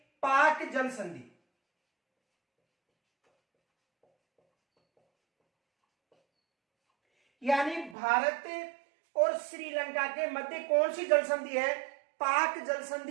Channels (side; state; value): left; drops out; at 8.0 s